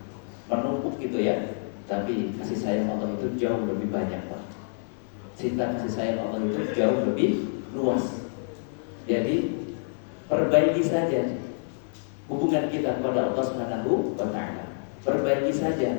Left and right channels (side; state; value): right; silent; digital silence